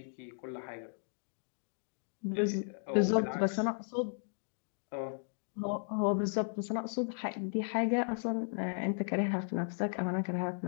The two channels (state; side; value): silent; right; digital silence